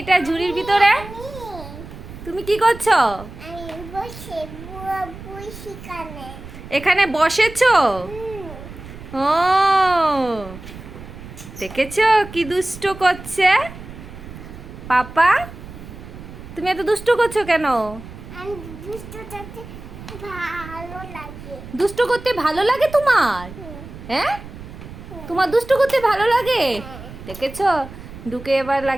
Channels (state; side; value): noise; right; rumble, 14 dB below the sound